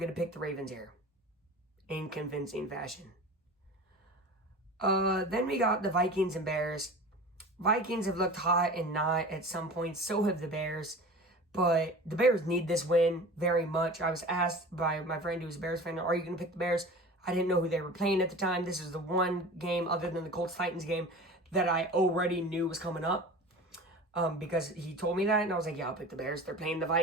to pick the Ravens here. In convincing fashion. Then we got the Vikings and Bears. Vikings have looked hot and not at some points. So have the Bears. But the Bears need this win very much. I was asked by my friend who's a Bears fan, are you going to pick the Bears? I didn't know who they were playing at the time. This is the one game other than the Colts-Titans game that I already knew was coming up. Because he told me that, and I was like, yeah, I'll pick the Bears. They're playing the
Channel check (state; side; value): normal; both; correlation 0.36